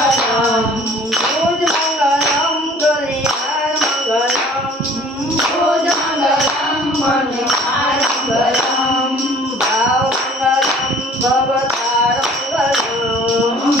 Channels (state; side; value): normal; both; correlation 0.51